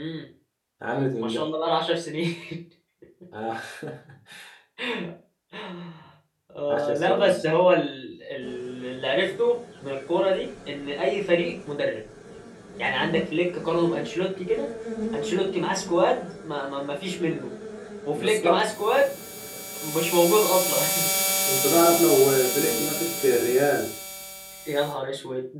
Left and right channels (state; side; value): identical; both; correlation 1.00